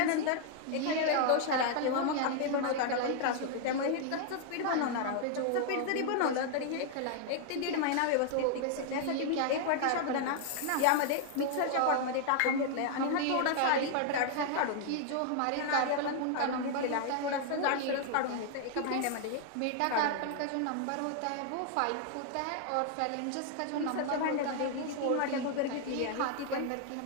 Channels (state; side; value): different; both; correlation 0.00